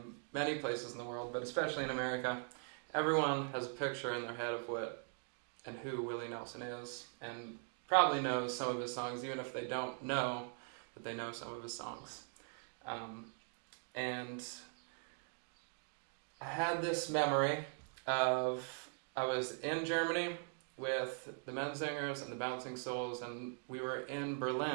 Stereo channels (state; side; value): silent; left; 50 dB below the other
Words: many places in the world, but especially in America, everyone has a picture in their head of what and who Willie Nelson is, and probably knows some of his songs, even if they don't know that they know some of his songs. And I had this memory of, I was in Germany with the Menzingers and the Bouncing Souls, and we were in